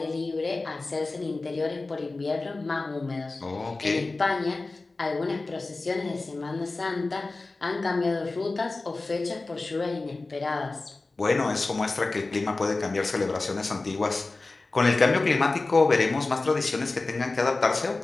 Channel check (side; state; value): right; quieter; 3.4 dB